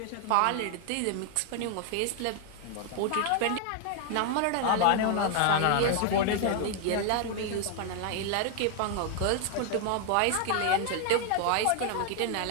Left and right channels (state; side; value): different; both; correlation 0.00